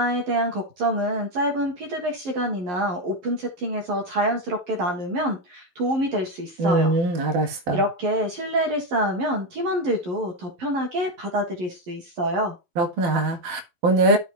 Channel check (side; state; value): left; late; 11 ms